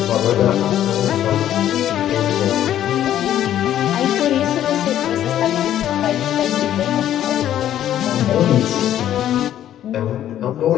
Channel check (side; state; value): right; quieter; 11.5 dB